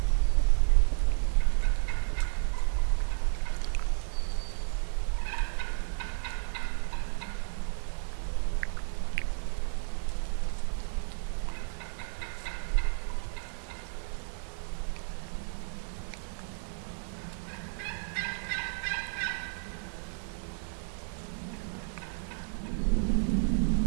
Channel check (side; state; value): left; silent; digital silence